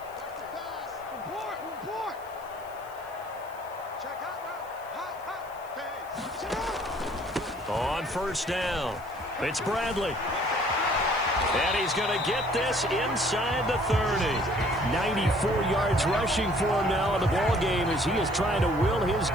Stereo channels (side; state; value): left; noise; hiss, 24 dB below the sound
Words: On first down, it's Bradley. And he's going to get this inside the 30. 94 yards rushing for him now in the ball game as he is trying to will his